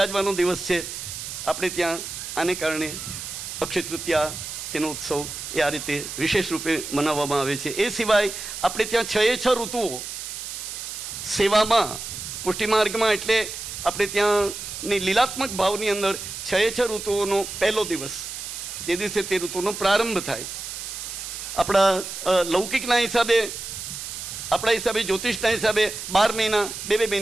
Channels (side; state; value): right; noise; hiss, 8 dB below the sound